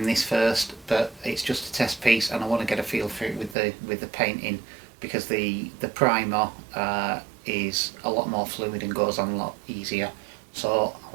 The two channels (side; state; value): left; drops out; at 3.6 s